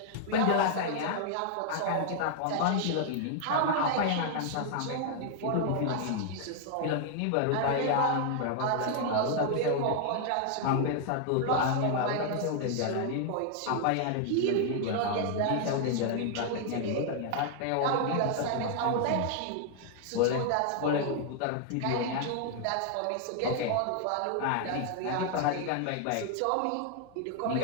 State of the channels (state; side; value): different; both; correlation 0.00